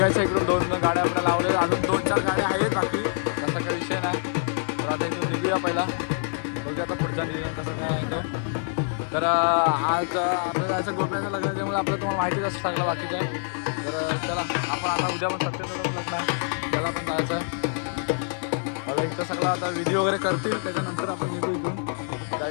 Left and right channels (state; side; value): silent; right; digital silence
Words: इकडून 2 गाड्या आपल्याला लावलेल्या. अजून 2-4 गाड्या आहेत बाकी, तसा काही विषय नाही. तर आता इथून निघूया पहिला, बघूया आता पुढचा नियोजन कसं काय आहे तो. तर आज आपल्याला जायचं गोप्याचं लग्न, त्यामुळे आपल्याला तुम्हाला माहितीच असं सगळं बाकीचं. तर चला आपण आता उद्या पण सत्यनारायण लग्न आहे, त्याला पण जायचं आहे. मला इथं सगळं आता व्हिडिओ वगैरे करतील, त्याच्यानंतर आपण निघू इथून. काय